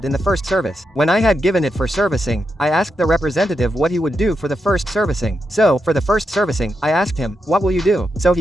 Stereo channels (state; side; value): normal; both; correlation 0.85